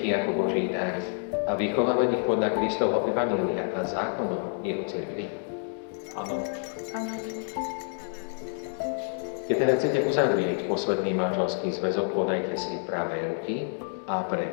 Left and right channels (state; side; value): silent; right; 59 dB below the other